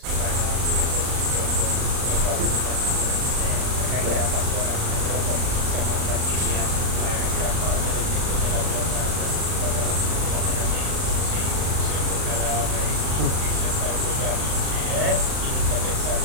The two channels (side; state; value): left; late; 38 ms